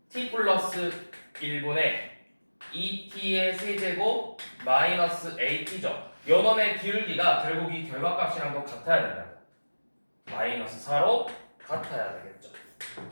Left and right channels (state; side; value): inverted; both; correlation -1.00